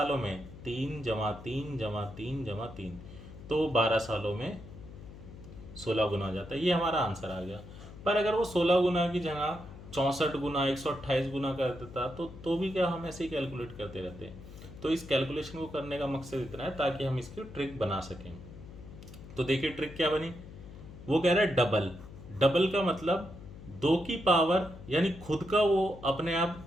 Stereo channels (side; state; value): left; noise; hum, 15 dB below the sound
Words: में, 3 जमा 3 जमा 3 जमा 3, तो 12 सालों में 16 गुना हो जाता है। ये हमारा आंसर आ गया। पर अगर वो 16 गुना की जगह 64 गुना 128 गुना कर देता तो भी क्या, हम ऐसे ही कैलकुलेट करते रहते। तो इस कैलकुलेशन को करने का मकसद इतना है ताकि हम इसकी ट्रिक बना सकें। तो देखिए ट्रिक क्या बनी, वो कह रहा है डबल, डबल का मतलब 2 की पावर, यानी खुद का वो अपने आप